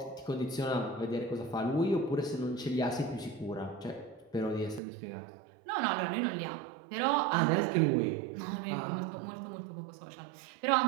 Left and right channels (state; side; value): drops out; left; at 4.8 s